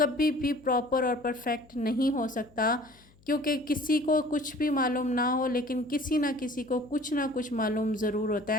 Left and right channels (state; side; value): noise; left; hum, 29 dB below the sound